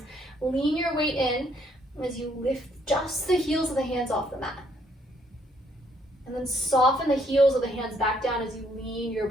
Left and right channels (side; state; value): both; normal; correlation 0.68